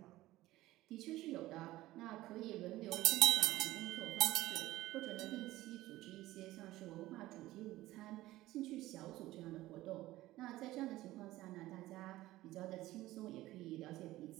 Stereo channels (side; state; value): left; quieter; 16.7 dB